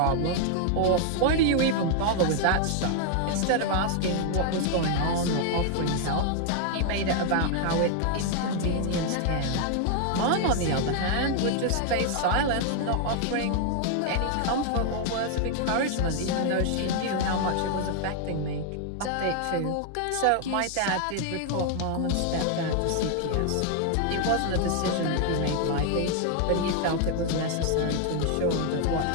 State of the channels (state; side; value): different; both; correlation 0.00